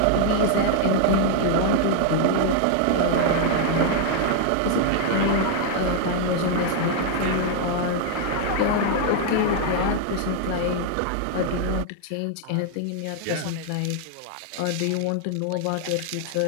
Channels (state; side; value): different; both; correlation 0.00